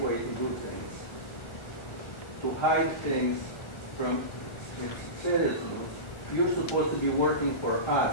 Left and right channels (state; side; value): late; right; 1.4 ms